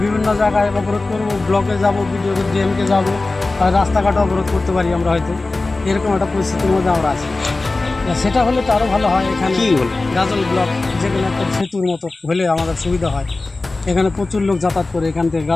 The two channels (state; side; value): quieter; right; 3.3 dB